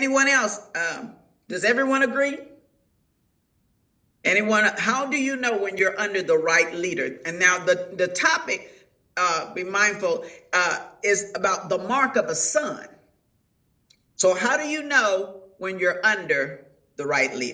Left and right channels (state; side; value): identical; both; correlation 1.00